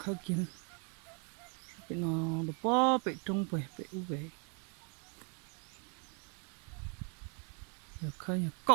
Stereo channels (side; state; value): left; quieter; 37.3 dB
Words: kia bị nó được bó bị trung về bị u về rồi khơi